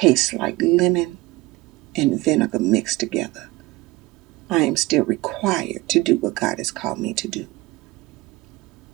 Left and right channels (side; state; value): left; quieter; 19.9 dB